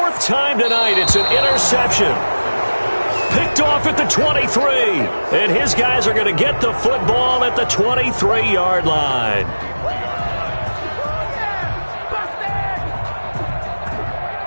time tonight, it's an interception. Picked off at the 23. And his guys are going to get the football at the 23-yard line.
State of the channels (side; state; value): both; inverted; correlation -1.00